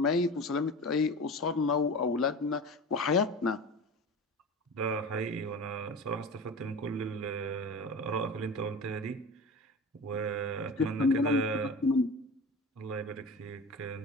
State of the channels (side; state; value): both; normal; correlation 0.33